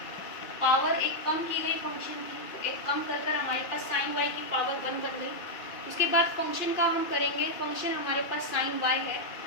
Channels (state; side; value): late; right; 2.3 ms